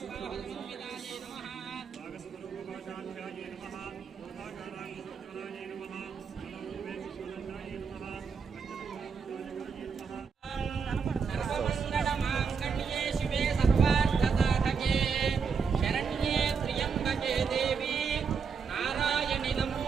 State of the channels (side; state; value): left; quieter; 5.9 dB